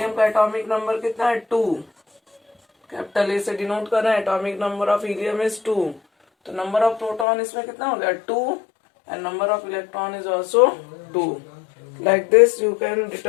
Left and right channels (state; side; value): drops out; right; at 7.2 s